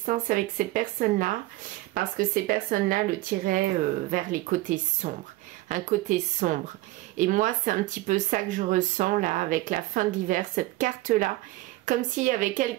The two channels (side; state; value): left; quieter; 18.4 dB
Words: avec ces personnes-là parce que ces personnes-là le tiraient vers les côtés sombres. Un côté sombre. Et moi, c'est un petit peu ça que je ressens là avec la fin de l'hiver, cette carte-là. Comme s'il y avait